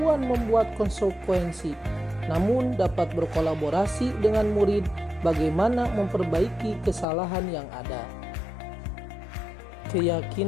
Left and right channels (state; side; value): drops out; right; at 7.1 s